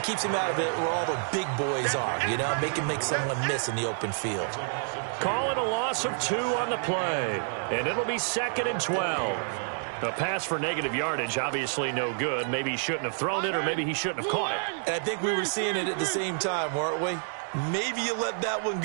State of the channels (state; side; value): silent; left; digital silence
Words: keeps him out of it where all the big boys are, you know, make someone miss in the open field. Call it a loss of 2 on the play, and it'll be 2nd and 12. A pass for negative yardage, obviously no good. Maybe he shouldn't have thrown it, or maybe he shouldn't have caught it. And I think we were seeing it at the same time, weren't we? Maybe you let that one